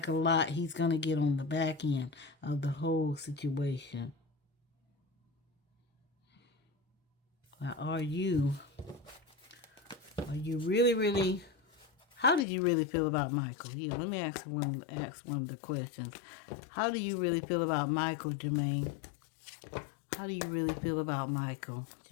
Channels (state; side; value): drops out; right; at 12.5 s